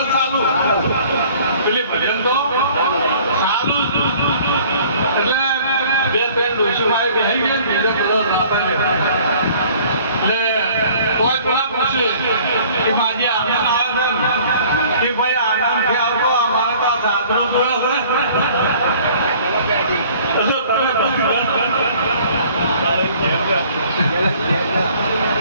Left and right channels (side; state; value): both; inverted; correlation -0.53